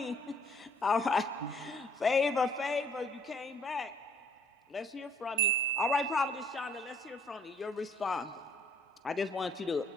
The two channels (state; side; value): normal; both; correlation 0.61